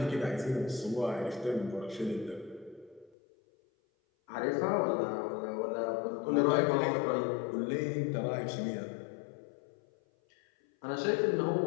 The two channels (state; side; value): drops out; right; at 3.1 s